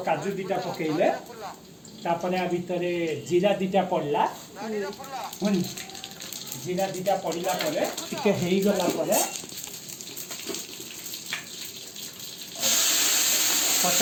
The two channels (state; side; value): identical; both; correlation 1.00